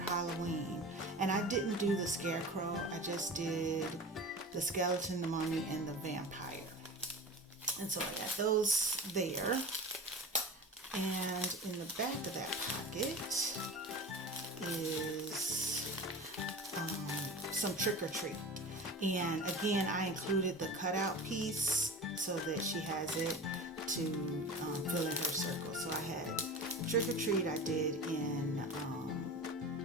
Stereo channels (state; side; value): normal; both; correlation 0.33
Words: Halloween, and I didn't do the scarecrow, I just did the skeleton, the mummy, and the vampire. And so I got those there. And in the back of that pocket is some trick or treat. And again, I included the cutout piece so that she has it to fill in her circle. So I had trick or treat I did in